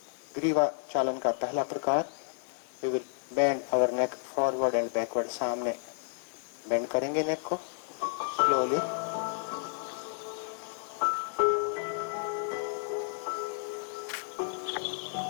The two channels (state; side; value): silent; right; digital silence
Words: ग्रीवा चालन का पहला प्रकार, we will bend our neck forward and backward. सामने बेंड करेंगे नेक को स्लोली,